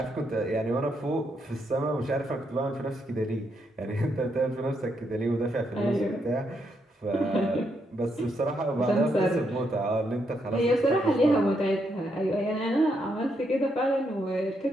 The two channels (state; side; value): normal; both; correlation 0.78